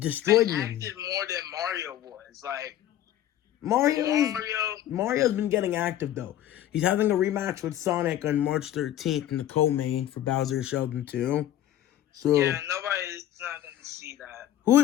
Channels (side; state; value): right; quieter; 12.1 dB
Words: me. Acted more than Mario was. Like Mario's been getting active though. He's having a rematch with Sonic on March 13th in the co-main for Bowser Sheldon too. So yeah, nobody's not gonna see that.